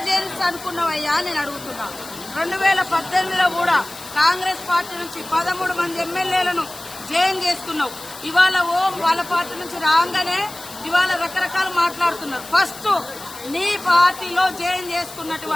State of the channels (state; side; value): noise; left; hiss, 15 dB below the sound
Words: జైన్స్ అనుకున్నావయ్యా నేను అడుగుతున్నా. 2018లో కూడా కాంగ్రెస్ పార్టీ నుంచి 13 మంది ఎమ్మెల్యేలను జైన్ చేసుకున్నావు. ఇవాళ వాళ్ళ పార్టీ నుంచి రాగానే ఇవాళ రకరకాలు మాట్లాడుతున్నారు. ఫస్ట్ నీ పార్టీలో జైన్